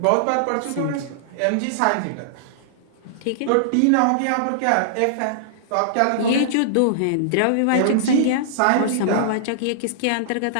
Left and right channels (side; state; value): both; different; correlation -0.01